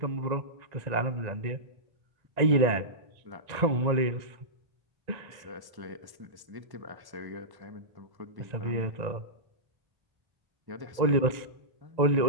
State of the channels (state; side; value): late; left; 1.9 ms